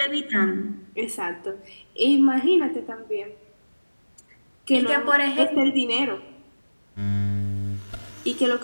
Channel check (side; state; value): both; inverted; correlation -1.00